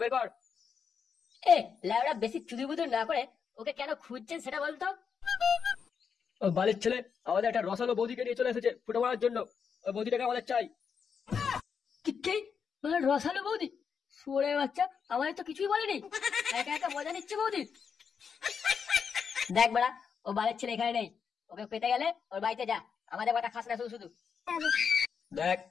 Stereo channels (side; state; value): right; quieter; 6.5 dB